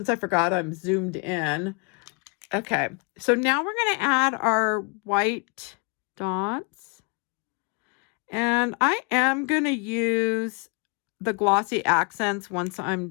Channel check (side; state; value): right; quieter; 33.6 dB